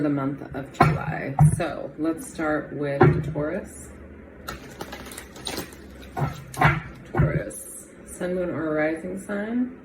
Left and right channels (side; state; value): both; identical; correlation 1.00